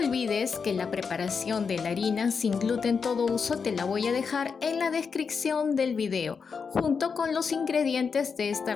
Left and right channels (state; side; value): quieter; right; 5.7 dB